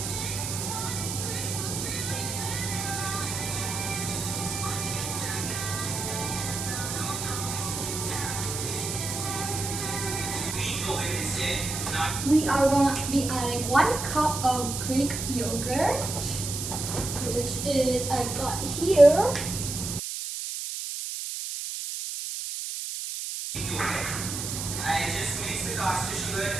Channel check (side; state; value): right; noise; hiss, 4 dB below the sound